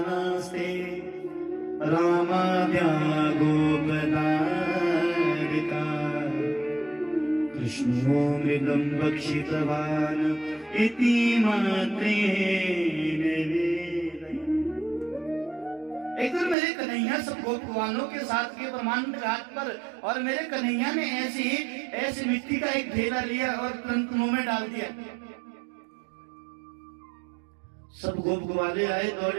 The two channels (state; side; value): drops out; left; at 16.6 s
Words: रामाद्या गोपदारिका, कृष्णो मृगं भक्षितवान् इति मात्रेण वेदयन्। एक दिन मेरे कन्हैया सब गोपवालों के साथ के ब्रह्मांड घाट पर, और मेरे कन्हैया ने ऐसी मिट्टी का एक ढेला लिया और तुरंत मुंह में डाल दिया। सब गोप ग्वाले आए